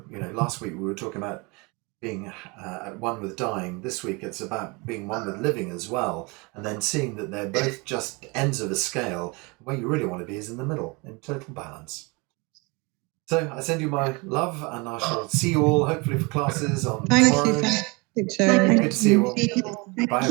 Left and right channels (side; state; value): left; quieter; 27.9 dB